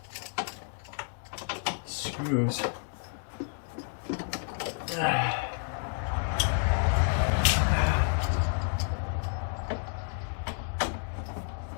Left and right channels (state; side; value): silent; right; 58 dB below the other